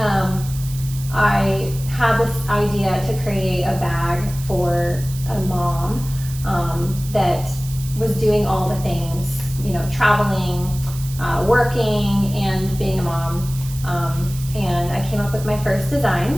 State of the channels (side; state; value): right; noise; hiss, 15 dB below the sound